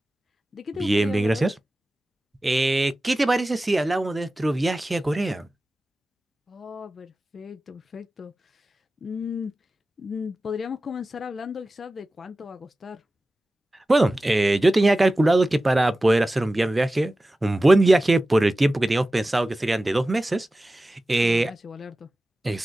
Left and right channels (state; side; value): normal; both; correlation 0.95